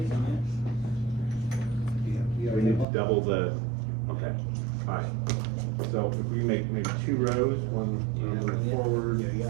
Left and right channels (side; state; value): left; drops out; at 2.9 s